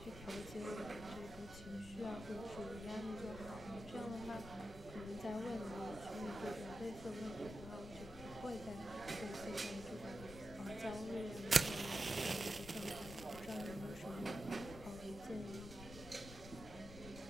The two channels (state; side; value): noise; left; rumble, 13 dB below the sound